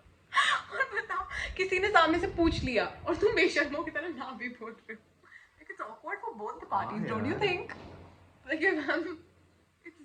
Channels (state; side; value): identical; both; correlation 1.00